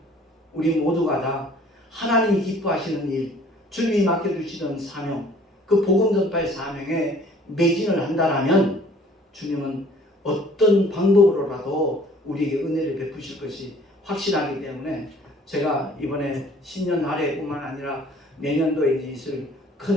우리 모두가 다 하나님이 기뻐하시는 일, 주님이 맡겨주시는 사명, 그 복음 전파의 사명에 매진을 한다라면 주님은 어떤 방법으로라도 우리에게 은혜를 베푸실 것이 확실하기 때문에 제가 이번에 신년 할애뿐만 아니라 내년도에 있을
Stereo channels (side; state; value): both; normal; correlation 0.54